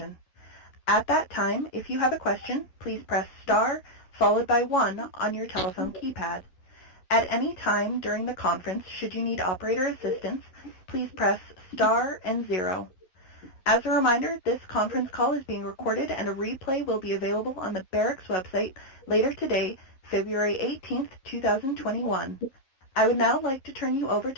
At that time, if you have a question, please press star followed by 1 on your telephone keypad. At any time during the conference, should you need operator assistance, please press star and 0. As a reminder, this conference call is being recorded and a replay will be available on the Barrick's website later today, February 18th, 2021. I would now like to turn you over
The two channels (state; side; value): late; right; 11 ms